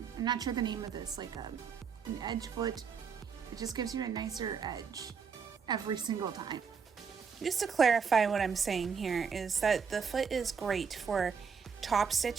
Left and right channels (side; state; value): left; quieter; 6.2 dB